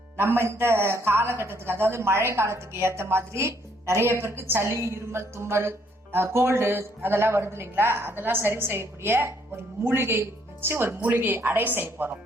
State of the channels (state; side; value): normal; both; correlation 0.68